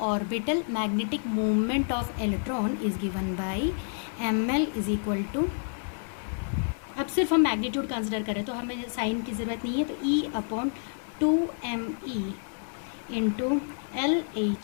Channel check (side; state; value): right; silent; digital silence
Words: of electron is given by ml is equal to, अब सिर्फ हम मैग्नीट्यूड कंसिडर करें तो हमें साइन की ज़रूरत नहीं है, तो E upon 2me into